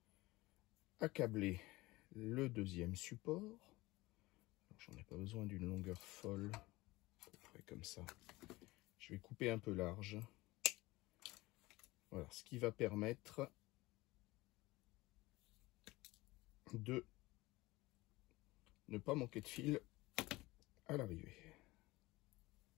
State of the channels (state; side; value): quieter; right; 20.4 dB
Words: à câbler le deuxième support. J'en ai pas besoin d'une longueur folle, à peu près comme ça. Je vais couper un peu large. Voilà, ce qui va permettre de ne pas manquer de fil à l'arrivée.